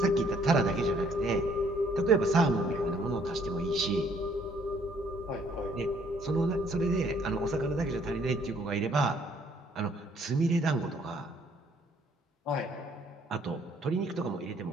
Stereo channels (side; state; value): both; normal; correlation 0.63